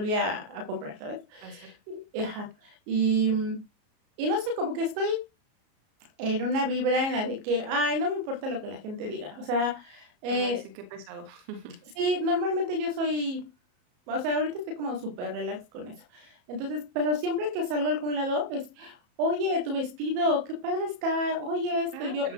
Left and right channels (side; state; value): left; late; 33 ms